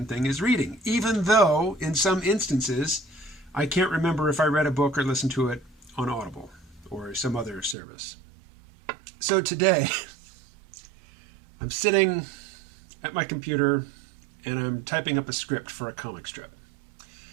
thing as reading, even though in some instances I can't remember if I read a book or listened to it on Audible or some other service. So today I'm sitting at my computer and I'm typing up a script for a comic strip.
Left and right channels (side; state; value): left; drops out; at 7.8 s